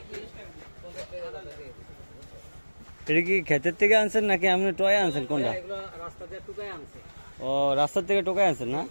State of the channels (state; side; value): inverted; both; correlation -1.00